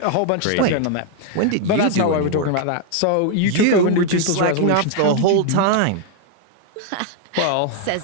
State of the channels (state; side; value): different; both; correlation 0.00